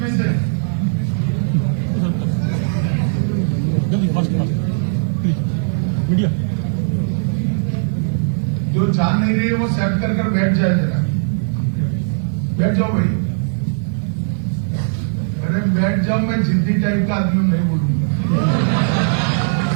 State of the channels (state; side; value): silent; left; digital silence